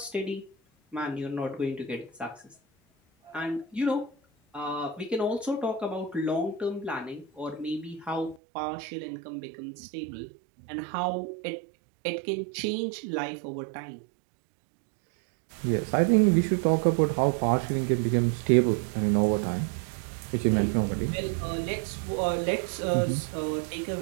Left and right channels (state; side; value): drops out; left; at 8.4 s